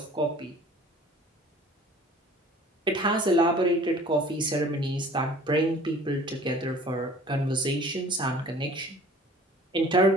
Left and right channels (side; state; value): both; normal; correlation 0.49